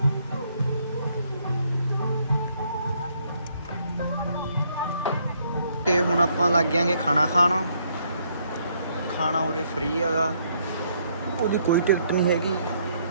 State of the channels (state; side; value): inverted; both; correlation -0.70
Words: ਤੇ ਹੁਣ ਆਪਾਂ ਲੱਗ ਜਾਾਂਗੇ ਖਾਣਾ ਖਾਣ। ਖਾਣਾ ਉਰੇ ਫ੍ਰੀ ਹੈਗਾ, ਉਹਦੀ ਕੋਈ ਟਿਕਟ ਨਹੀਂ ਹੈਗੀ।